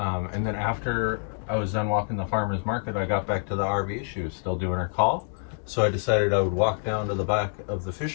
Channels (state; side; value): silent; right; 59 dB below the other